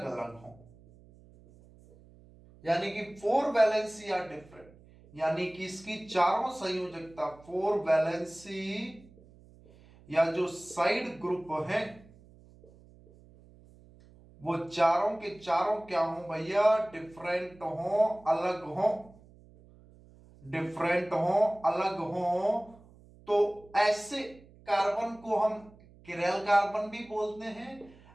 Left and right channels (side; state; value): right; noise; hum, 24 dB below the sound